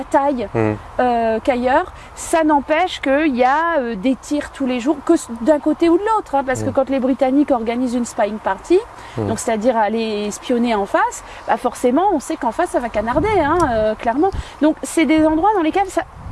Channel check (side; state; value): both; identical; correlation 1.00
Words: qu'ailleurs. Ça n'empêche qu'il y a des tirs tous les jours, que d'un côté ou de l'autre. Parce que quand les Britanniques organisent une spying party, donc c'est-à-dire aller espionner en face, forcément on sait qu'en face ça va canarder, clairement. Donc c'est des endroits dans lesquels